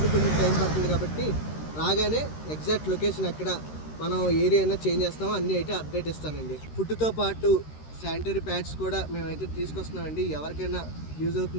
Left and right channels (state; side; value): late; right; 13 ms